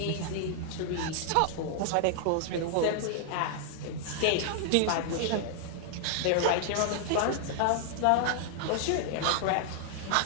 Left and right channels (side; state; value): both; different; correlation 0.00